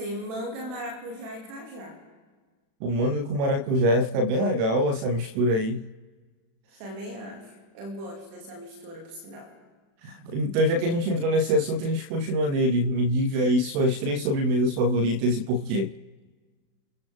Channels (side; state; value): left; late; 36 ms